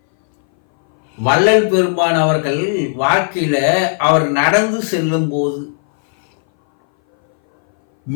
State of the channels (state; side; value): silent; right; 62 dB below the other